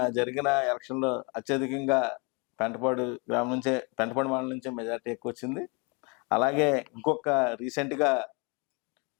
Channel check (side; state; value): right; quieter; 31.3 dB